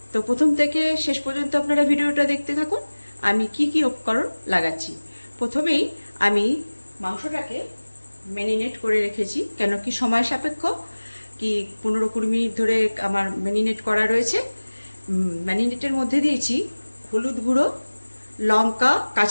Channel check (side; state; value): both; inverted; correlation -1.00